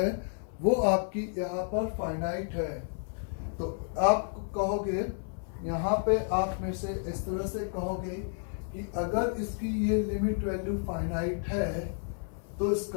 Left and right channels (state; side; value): silent; right; 57 dB below the other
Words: वो आपकी यहाँ पर फाइनाइट है। तो आप कहोगे यहाँ पे आप में से इस तरह से कहोगे कि अगर इसकी ये लिमिट वैल्यू फाइनाइट है तो